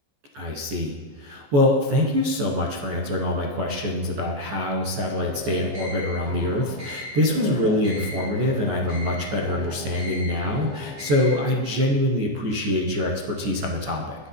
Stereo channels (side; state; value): left; late; 14 ms